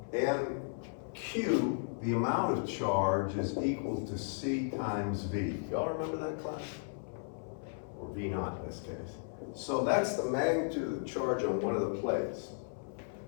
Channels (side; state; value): right; silent; 54 dB below the other